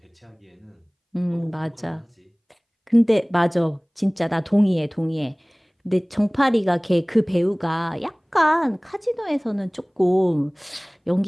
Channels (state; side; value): identical; both; correlation 1.00